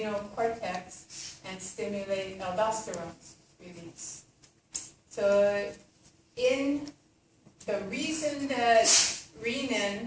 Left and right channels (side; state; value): both; identical; correlation 1.00